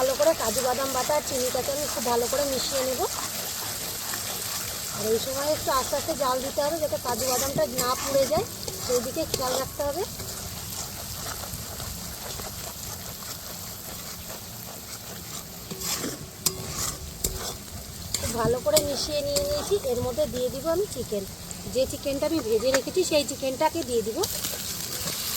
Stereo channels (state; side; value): identical; both; correlation 1.00